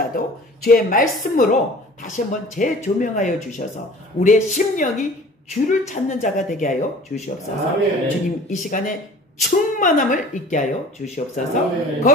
주의 말씀으로 다시 한번 재조명하여 주셔서 우리의 심령이 주를 찾는 자가 되게 하여 주시옵소서. 아멘. 주님, 이 시간에 충만함을 있게 하여 주시옵소서. 아멘.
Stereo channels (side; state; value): both; normal; correlation 0.45